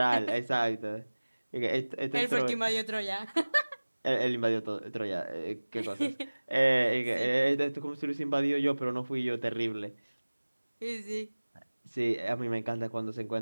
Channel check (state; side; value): inverted; both; correlation -1.00